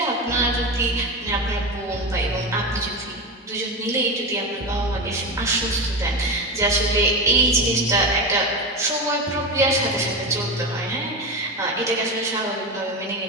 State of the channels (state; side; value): normal; both; correlation 0.20